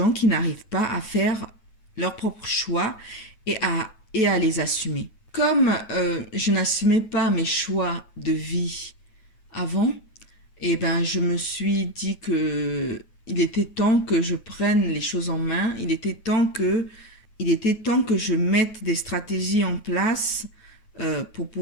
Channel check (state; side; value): late; right; 9.2 ms